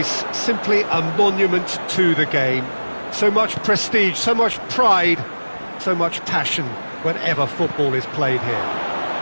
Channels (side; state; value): both; inverted; correlation -1.00